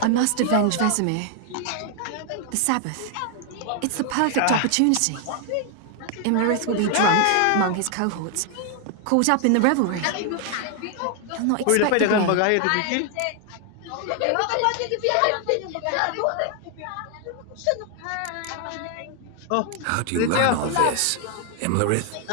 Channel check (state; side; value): different; both; correlation 0.00